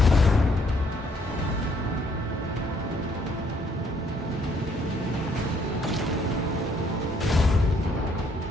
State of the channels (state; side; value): normal; both; correlation 0.67